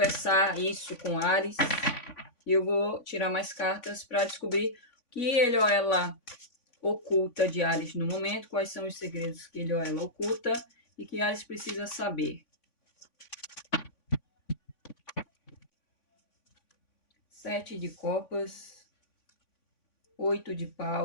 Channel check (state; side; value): late; right; 3.5 ms